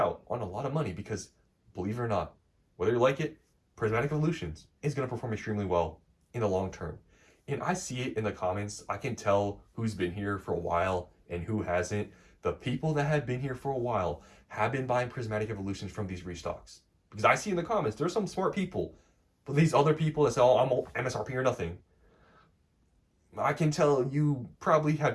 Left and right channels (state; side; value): identical; both; correlation 1.00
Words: on a lot of money because, believe it or not, whether you like it, Prismatic Evolutions is going to perform extremely well in the long term. And I see it in the comments. I can tell who's been here for a while and who hasn't. The people that have been here for a while have been buying Prismatic Evolutions from these restocks. Because I see in the comments, there's some smart people. But these other people that say, oh, I'm MSRP or nothing, I can tell you probably have